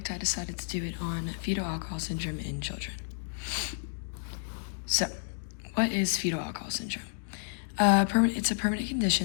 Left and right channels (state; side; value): silent; right; digital silence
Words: I decided to do it on fetal alcohol syndrome in children. So, what is fetal alcohol syndrome? It's a permanent